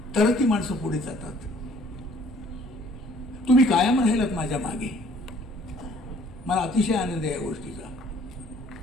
तर ती माणसं पुढे जातात. तुम्ही कायम राहिलात माझ्या मागे. मला अतिशय आनंद आहे या गोष्टीचा.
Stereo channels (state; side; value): normal; both; correlation 0.58